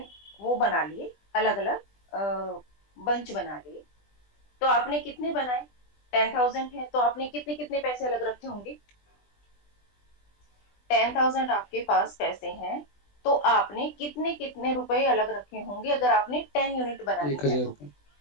वो बना लिए, अलग अलग बंच बना लिए, तो आपने कितने बनाए, 10,000 है तो आपने कितने कितने पैसे अलग रखे होंगे, 10,000 आपके पास पैसे हैं तो आपने कितने कितने रुपए अलग रखे होंगे, अगर आपने 10 यूनिट बनानी एक है हजार तो। रुपये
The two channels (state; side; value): late; right; 20 ms